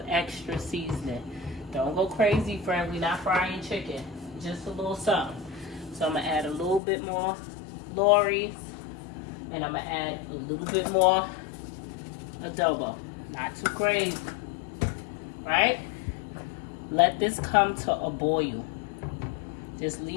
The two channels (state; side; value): drops out; right; at 6.8 s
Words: extra seasoning. Don't go crazy, friend. We're not frying chicken. Just a little something. So I'm going to add a little bit more Lorry's. And I'm going to add a little bit more adobo. Not too crazy. Right? Let this come to a boil. Just